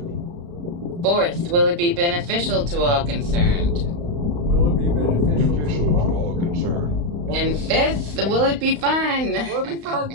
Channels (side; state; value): left; late; 35 ms